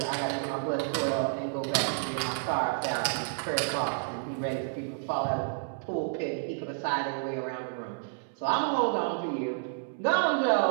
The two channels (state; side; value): silent; left; digital silence